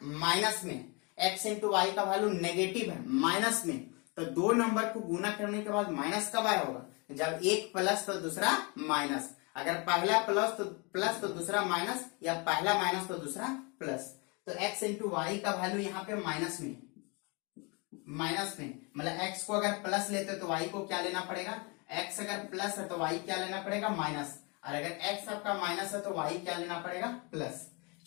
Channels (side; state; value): right; quieter; 30.7 dB